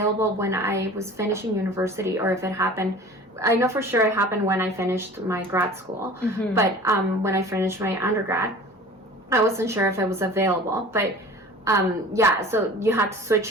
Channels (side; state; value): both; normal; correlation 0.42